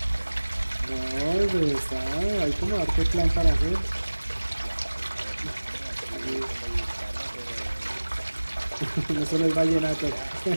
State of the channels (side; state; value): both; inverted; correlation -1.00